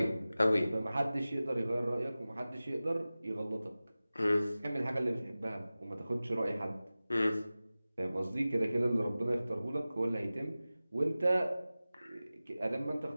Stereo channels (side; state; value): both; inverted; correlation -0.97